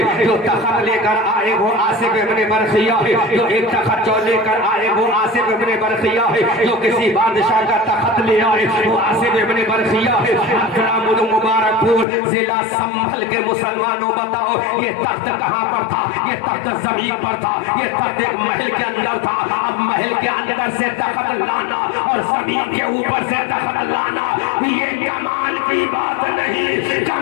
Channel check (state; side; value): drops out; right; at 12.1 s